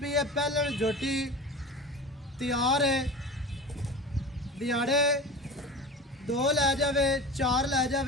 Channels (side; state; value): both; normal; correlation 0.32